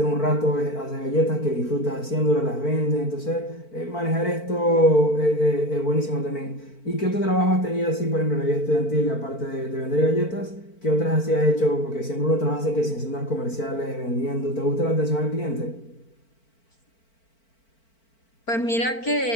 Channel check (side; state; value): right; late; 4.5 ms